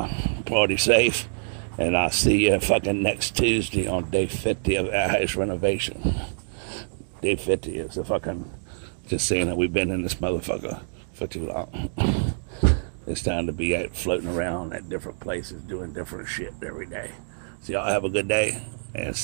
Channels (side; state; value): left; silent; digital silence